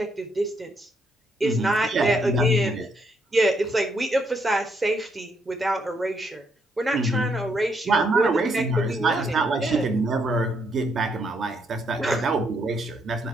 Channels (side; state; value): both; normal; correlation 0.74